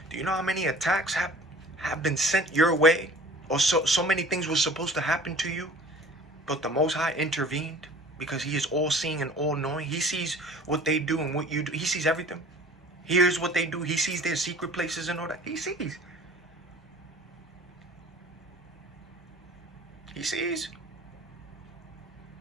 Do you know how many attacks have been sent your way? Or so many things were supposed to happen to you, but the Most High intervened because he is all-seeing and all-knowing. He sees what they do and what you do. He sees everything. He hears what they do. He sees their secret places and all that. He sees. He sees.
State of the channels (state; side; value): normal; both; correlation 0.46